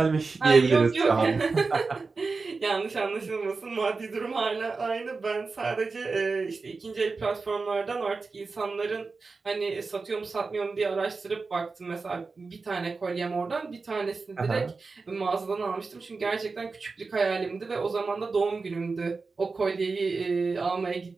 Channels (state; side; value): quieter; left; 4.2 dB